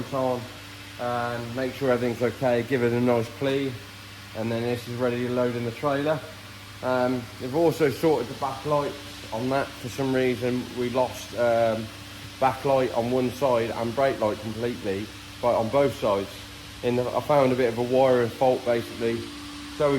on, and make sure everything's okay, give it a nice clean, and then this is ready to load in the trailer. We've also sorted the backlights on that. For some reason we lost backlight on one side and brake light completely, but on both sides. I found a bit of a wiring fault basically. So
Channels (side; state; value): both; identical; correlation 1.00